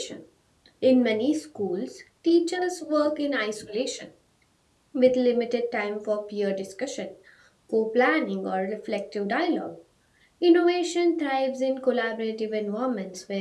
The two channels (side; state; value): both; identical; correlation 1.00